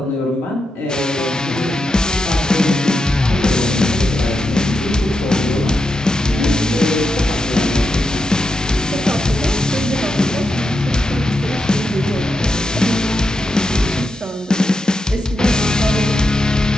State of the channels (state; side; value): normal; both; correlation 0.86